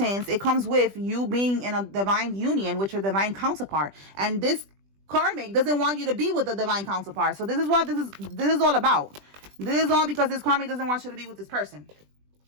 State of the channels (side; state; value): left; late; 20 ms